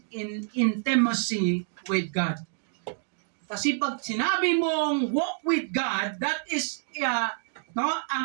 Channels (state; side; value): silent; left; 60 dB below the other